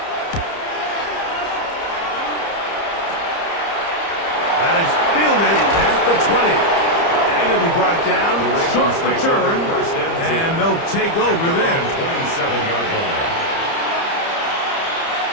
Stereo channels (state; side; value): late; right; 30 ms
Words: That is fielded at the 20. And it'll be brought down, short return, and they'll take over there. 27-yard line.